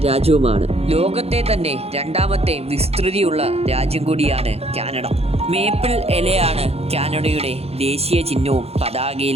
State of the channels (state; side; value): late; left; 0.29 ms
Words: രാജ്യവുമാണ്. ലോകത്തെ തന്നെ രണ്ടാമത്തെ വിസ്തൃതിയുള്ള രാജ്യം കൂടിയാണ് കാനഡ. മേപ്പിൾ ഇലയാണ് കാനഡയുടെ ദേശീയ ചിഹ്നവും